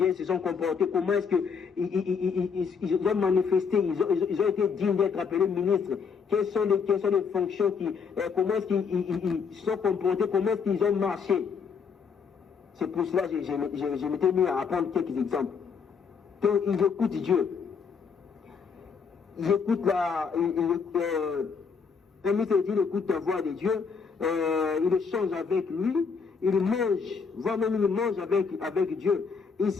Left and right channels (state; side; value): quieter; right; 5.9 dB